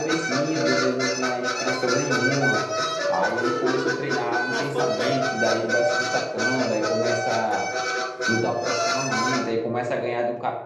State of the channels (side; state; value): both; identical; correlation 1.00